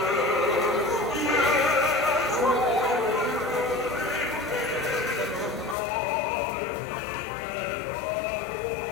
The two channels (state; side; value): drops out; right; at 5.8 s